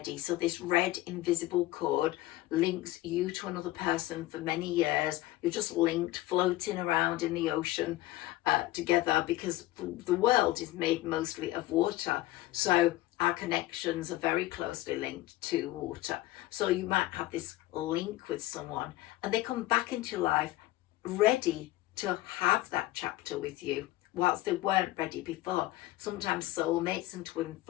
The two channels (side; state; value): right; quieter; 16.9 dB